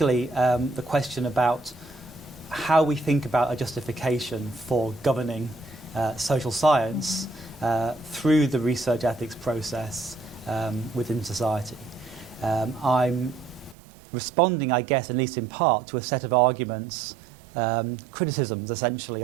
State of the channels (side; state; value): left; drops out; at 13.8 s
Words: the question about how we think about a justification for governing social science through the research ethics process within society. I'm responding, I guess, at least in part, to a set of arguments, criticisms essentially